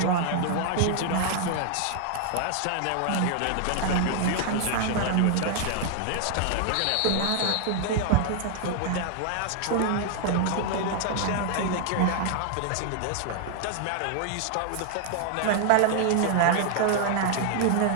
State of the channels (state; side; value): different; both; correlation 0.00